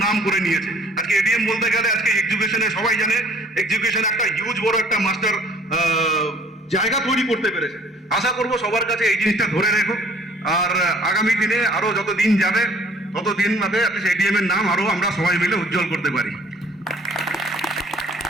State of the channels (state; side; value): normal; both; correlation 0.55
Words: নাম করে নিয়েছে। আজকে এডিএম বলতে গেলে আজকে এডুকেশনে সবাই জানে এডুকেশন একটা হিউজ বড় একটা মাস্টার জায়গা তৈরি করতে পেরেছে। আশা করব সবার কাছে এই জিনিসটা ধরে রেখো, আর আগামী দিনে আরো যত দিন যাবে তত দিন বাদে এডিএম এর নাম আরো আমরা সবাই মিলে উজ্জ্বল করতে পারি।